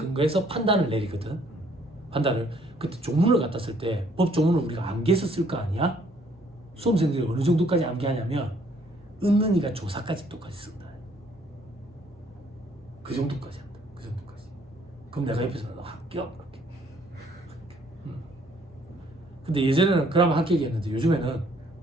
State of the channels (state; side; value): normal; both; correlation 0.64